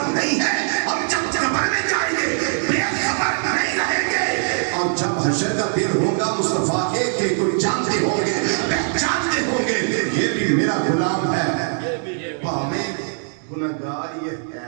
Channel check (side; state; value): left; silent; digital silence